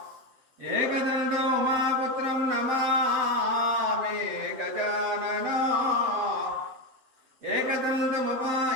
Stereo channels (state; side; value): late; left; 7.7 ms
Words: ఏకదంతం ఉమాపుత్రం నమామి గజానన